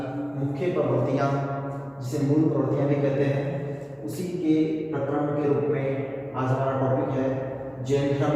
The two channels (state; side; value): identical; both; correlation 1.00